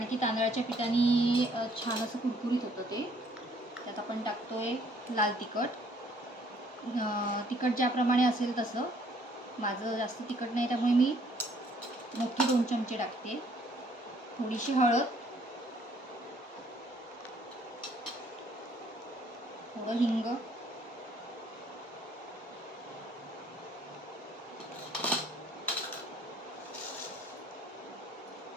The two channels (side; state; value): both; normal; correlation 0.62